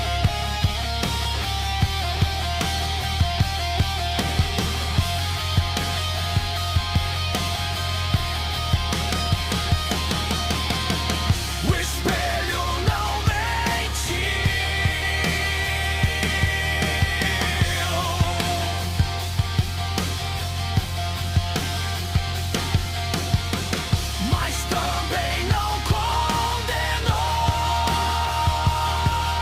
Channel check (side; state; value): both; identical; correlation 1.00